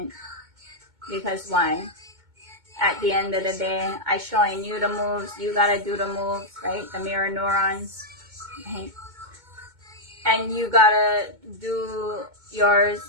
Because why? At the end of the day, I showing you the moves, you gotta do the moves, right? The mirror neurons, right? And you gotta do yours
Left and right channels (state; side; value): late; left; 2.2 ms